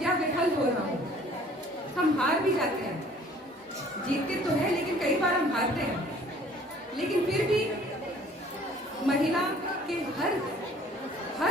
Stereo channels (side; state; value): both; normal; correlation 0.54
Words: या विफल हो रहा हो, हम हार भी जाते हैं, जीतते तो है लेकिन कई बार हम हारते हैं। लेकिन फिर भी महिला के